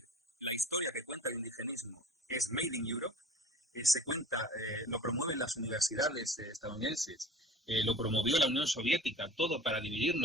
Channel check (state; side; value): normal; both; correlation 0.42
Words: La historia que cuenta el indigenismo es Made in Europe, se cuenta, lo promueven las universidades estadounidenses, lo promovió la Unión Soviética, todo para